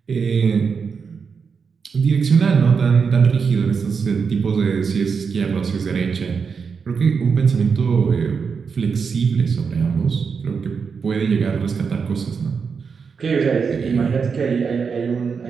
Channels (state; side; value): quieter; left; 5.7 dB